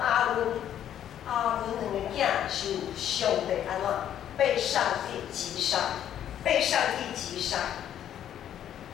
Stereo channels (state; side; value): quieter; right; 10.4 dB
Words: 阿伦两个囝是上帝安怎被上帝击杀，被上帝击杀。